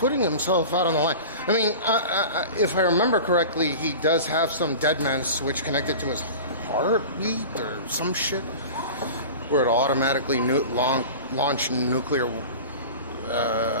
himself out on the line. I mean, if I remember correctly, he does have some dead man switch connected to his heartbeat or some shit, where it'll automatically launch nuclear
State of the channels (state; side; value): inverted; both; correlation -0.35